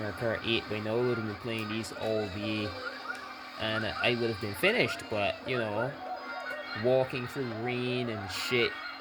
Kart 8 by now. I would have been playing these all day and I would have been finished, but you know, walking through rain and shit.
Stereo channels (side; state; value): both; identical; correlation 1.00